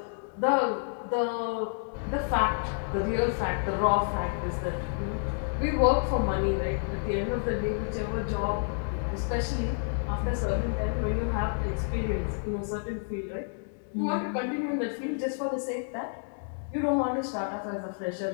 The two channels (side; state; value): right; silent; 58 dB below the other